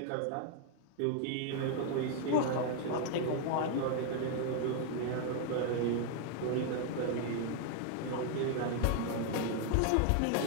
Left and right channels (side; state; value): both; different; correlation 0.00